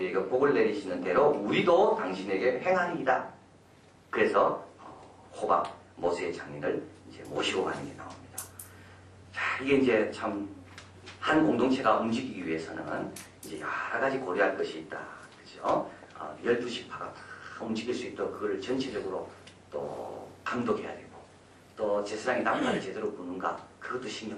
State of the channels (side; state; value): both; identical; correlation 1.00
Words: 복을 내리시는 대로 우리도 당신에게 행하리이다. 그래서 호밥 모세의 장인을 이제 모시고 가는 게 나옵니다. 자, 이게 이제 참 한 공동체가 움직이기 위해서는 이제 여러 가지 고려할 것이 있다. 그죠? 12지파가 다 움직일 수 있도록 그걸 전체적으로 또 감독해야 되고, 또 제사장이 나팔을 제대로 부는가 그것도